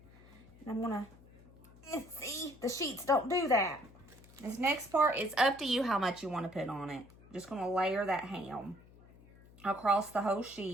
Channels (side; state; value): left; noise; hum, 23 dB below the sound